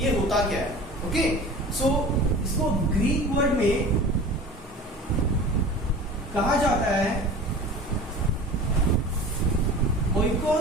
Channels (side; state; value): both; normal; correlation 0.38